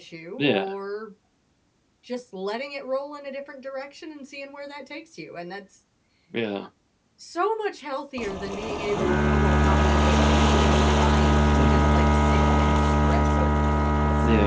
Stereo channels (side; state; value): both; identical; correlation 1.00